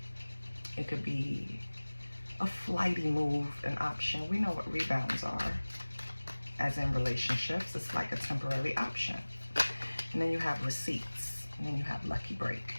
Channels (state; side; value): inverted; both; correlation -1.00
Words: It could be a flighty move, an option. We know what rebounds are, as in relationships. It's like a temporary option. And then you have receipts, and then you have lucky break.